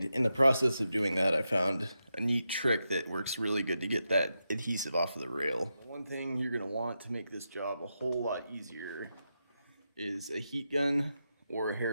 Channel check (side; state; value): both; inverted; correlation -0.87